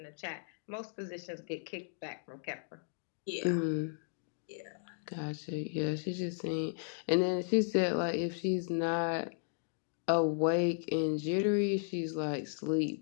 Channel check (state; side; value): silent; right; digital silence